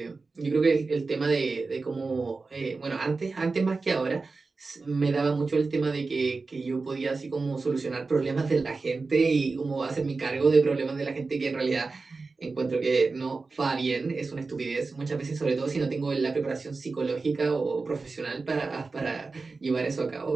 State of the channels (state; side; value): quieter; left; 4.0 dB